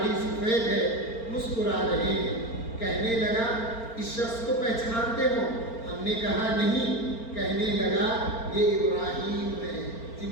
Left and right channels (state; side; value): late; right; 4.4 ms